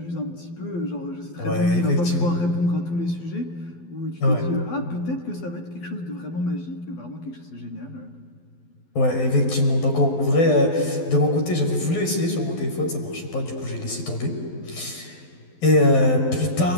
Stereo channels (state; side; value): late; right; 12 ms